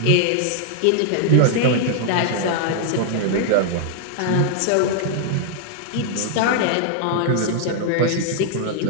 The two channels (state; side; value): different; both; correlation -0.01